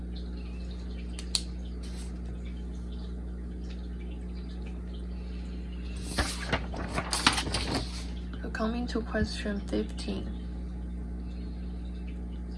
So coming to question 15.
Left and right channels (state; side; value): identical; both; correlation 1.00